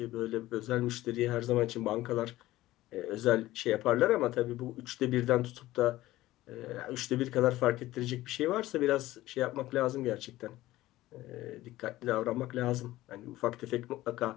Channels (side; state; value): right; quieter; 16.4 dB